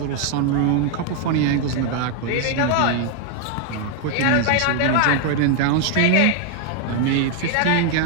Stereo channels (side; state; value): both; different; correlation 0.00